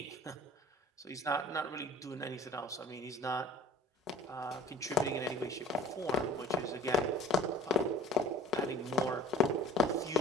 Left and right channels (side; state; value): both; normal; correlation 0.45